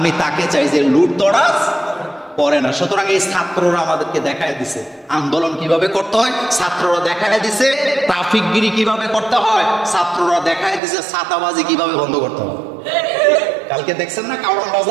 তাকে চাই যে লুটতরাজ করে না। সুতরাং এই ছাত্ররা আমাদেরকে দেখায় দিছে আন্দোলন কিভাবে করতে হয়, ছাত্ররা দেখায় দিছে ট্রাফিকগিরি কিভাবে করতে হয়, ছাত্ররা দেখায় দিছে ছাতাবাজি কিভাবে বন্ধ করতে হয়। কালকে দেখছেন না কারণ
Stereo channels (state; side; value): drops out; left; at 10.8 s